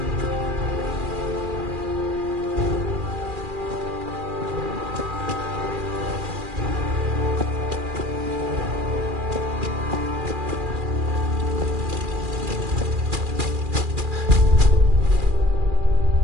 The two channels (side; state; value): left; late; 2.4 ms